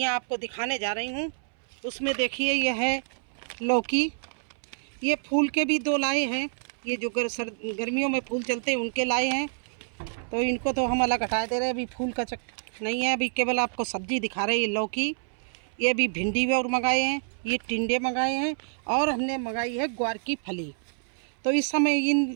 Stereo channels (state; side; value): silent; left; 60 dB below the other